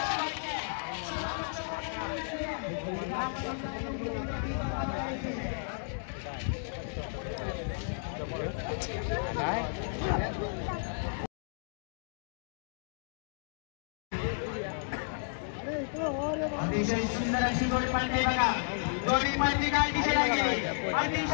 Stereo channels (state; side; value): silent; right; digital silence